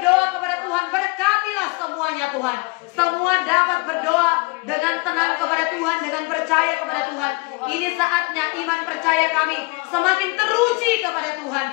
kepada Tuhan, Tuhan, berkatilah semuanya Tuhan. Semua dapat berdoa dengan tenang kepada Tuhan, dengan percaya kepada Tuhan. Ini saatnya iman percaya kami semakin teruji kepada Tuhan.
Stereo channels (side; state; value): right; quieter; 27.2 dB